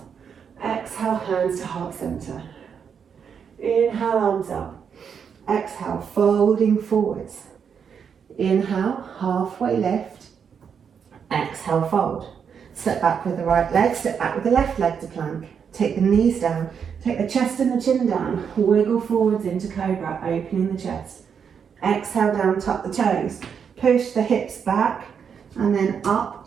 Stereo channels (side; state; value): left; quieter; 7.0 dB